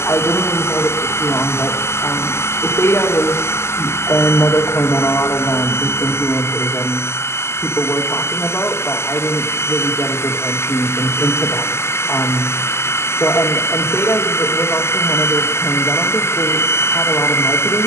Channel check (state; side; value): late; right; 0.12 ms